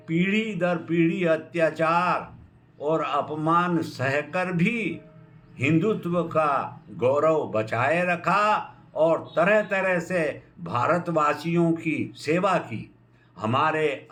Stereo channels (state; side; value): identical; both; correlation 1.00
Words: पीढ़ी दर पीढ़ी अत्याचार और अपमान सहकर भी हिंदुत्व का गौरव बचाए रखा और तरह तरह से भारतवासियों की सेवा की। हमारे